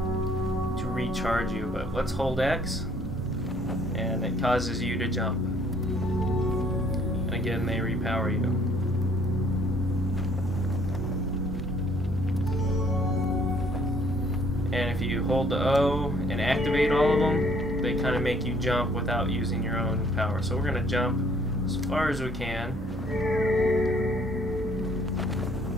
to recharge you, but let's hold X and it causes you to jump. And again, they repower you. And if you hold the O and activate all of them, they kind of make you jump without using your own power. So we're going to jump as far as we can.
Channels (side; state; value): both; normal; correlation 0.61